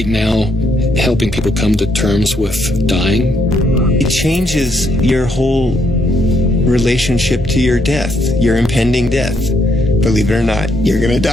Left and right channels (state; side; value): normal; both; correlation 0.73